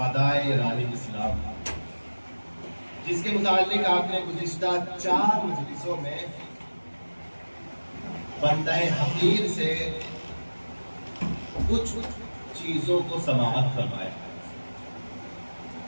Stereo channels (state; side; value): inverted; both; correlation -1.00